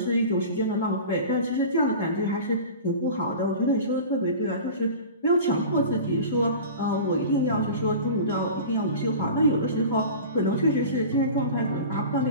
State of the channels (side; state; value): both; inverted; correlation -0.36